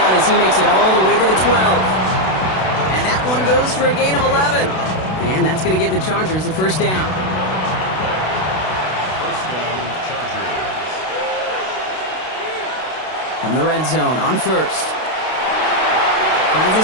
as he makes it all the way to the 12. And that one goes for a gain of 11. And that's going to give the Chargers a 1st down. First down, Chargers. From the red zone on 1st. Finds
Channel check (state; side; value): late; right; 32 ms